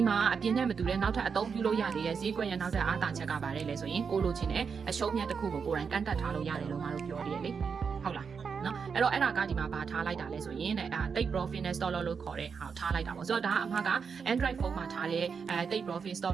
မှာအပြင်းနဲ့မတူတဲ့နောက်ထပ်အသုံးပြုလို့ရသေးတဲ့ဈေးကွက်ရနောက်ထပ်အားသာချက်ကပါတယ်လေဆိုရင်ကိုလိုချင်တဲ့အရှုံးမြတ်တစ်ခုကိုကိုယ်တိုင်ကန့်တက်ထားလို့ရတယ်လို့ငါတို့ပြောရတယ်လေဟုတ်လားနော်အဲ့တော့အဲ့ဒါကဒီမှာဘာထားလိုက်တာလဲဆိုရင်တိတ် profit နဲ့ stop loss လို့ခေါ်တဲ့ဟာထားလိုက်တာပေါ့ဆိုတော့ဒါကအမှက Android phone မှာထားတဲ့တိတ် profit stop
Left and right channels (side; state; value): left; quieter; 6.0 dB